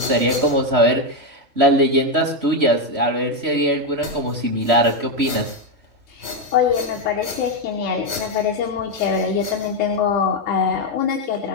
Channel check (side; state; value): left; late; 3.3 ms